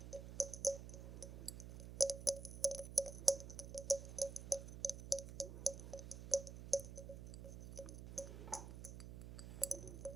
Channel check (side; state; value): right; noise; hum, 9 dB below the sound